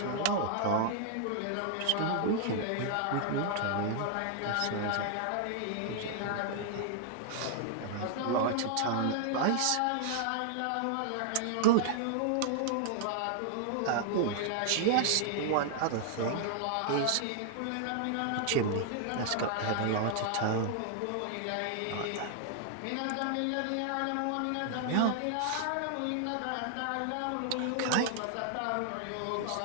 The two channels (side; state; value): both; different; correlation 0.00